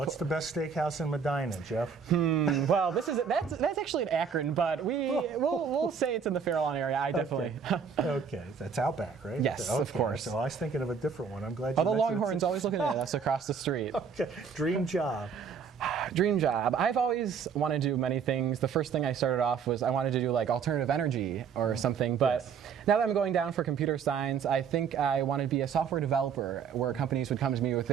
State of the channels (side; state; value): left; quieter; 6.5 dB